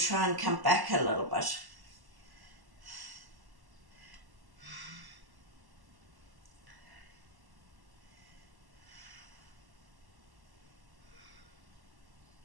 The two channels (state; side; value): late; left; 1.1 ms